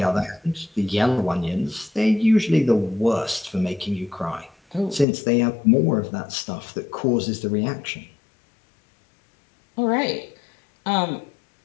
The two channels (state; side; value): drops out; right; at 5.1 s